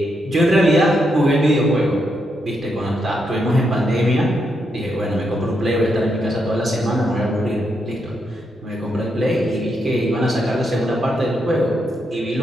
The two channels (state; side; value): normal; both; correlation 0.81